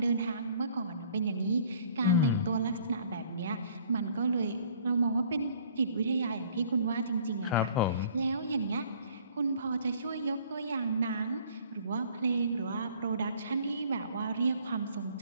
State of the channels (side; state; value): both; inverted; correlation -0.55